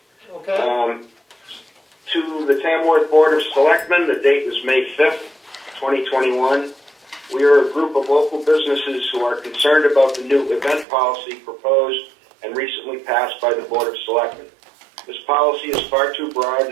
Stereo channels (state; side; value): drops out; left; at 10.9 s